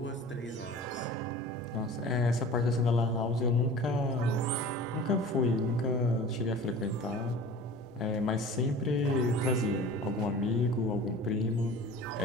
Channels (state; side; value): normal; both; correlation 0.40